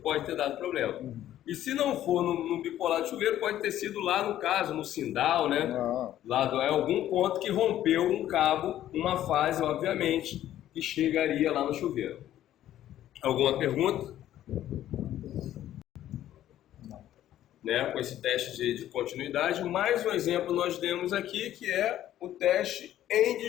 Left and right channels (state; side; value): quieter; right; 12.4 dB